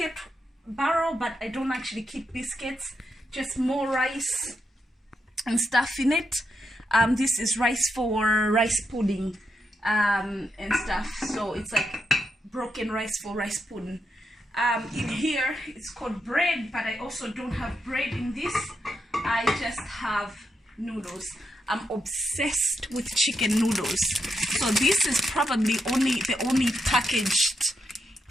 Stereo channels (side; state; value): both; normal; correlation 0.83